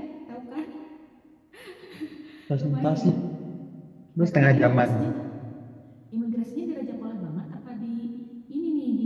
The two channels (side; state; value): both; identical; correlation 1.00